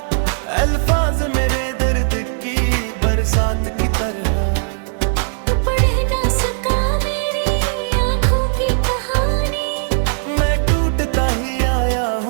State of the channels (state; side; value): silent; left; 67 dB below the other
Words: अल्फाज मेरे दर्द की बरसात की तरह। तू पढ़ ना सका मेरी आंखों की कहानी। मैं टूटता ही आया